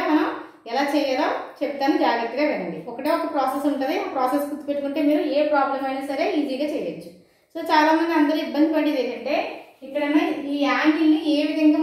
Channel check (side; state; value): both; identical; correlation 1.00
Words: మనం ఎలా చేయాలో చెప్తాను, జాగ్రత్తగా వినండి. ఒకటే ఒక ప్రాసెస్ ఉంటుంది, ఆ ప్రాసెస్ గుర్తుపెట్టుకుంటే మీరు ఏ ప్రాబ్లం అయినా సరే ఈజీగా చేయొచ్చు. సో చాలా మంది అందరూ ఇబ్బంది పడేది ఏంటంటే ఇక్కడ ఈ యాంగిల్ ని ఏ విధంగా